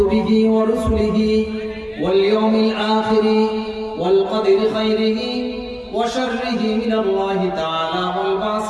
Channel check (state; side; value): identical; both; correlation 1.00